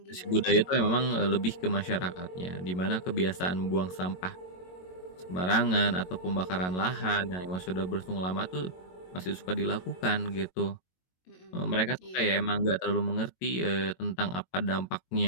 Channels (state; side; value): late; right; 22 ms